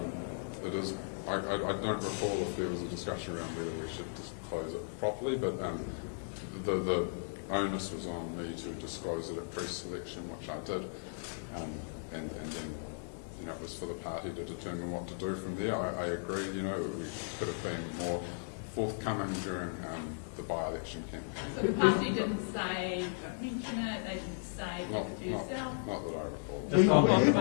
don't recall if there was a discussion around whether we should disclose it properly, but the onus was on me to disclose it at pre-selection, which I did, and then, you know, it was for the party to determine what to do from there. I agree, you know, we could have been more forthcoming during the by-election campaign. So the party didn't say, don't mention it, they didn't say, keep it to yourself? Not that I recall.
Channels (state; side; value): silent; right; digital silence